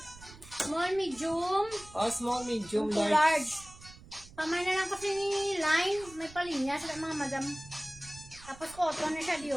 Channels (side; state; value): right; noise; rumble, 19 dB below the sound